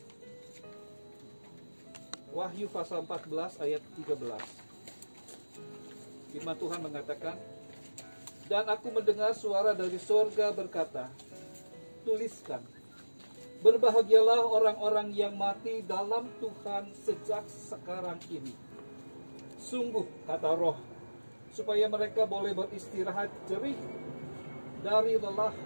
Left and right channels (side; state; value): both; inverted; correlation -1.00